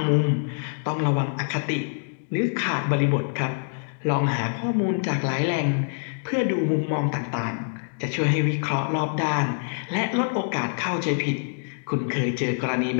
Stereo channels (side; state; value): right; silent; digital silence